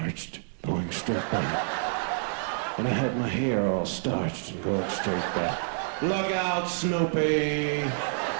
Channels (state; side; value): silent; left; 59 dB below the other